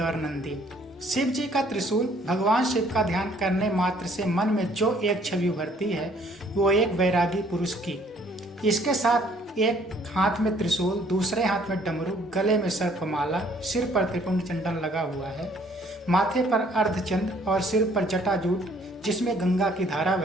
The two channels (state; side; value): normal; both; correlation 0.61